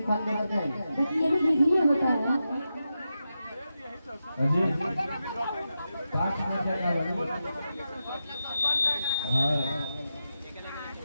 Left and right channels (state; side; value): inverted; both; correlation -0.89